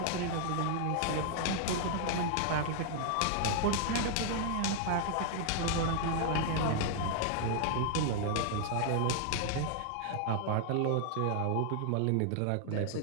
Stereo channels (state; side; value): different; both; correlation 0.00